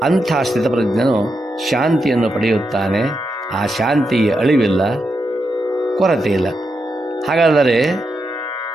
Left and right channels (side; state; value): both; normal; correlation 0.85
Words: ಅಂಥ ಸ್ಥಿತಪ್ರಜ್ಞನು ಶಾಂತಿಯನ್ನು ಪಡೆಯುತ್ತಾನೆ. ಆ ಶಾಂತಿಗೆ ಅಳಿವಿಲ್ಲ, ಕೊರತೆ ಇಲ್ಲ. ಹಾಗಾದರೆ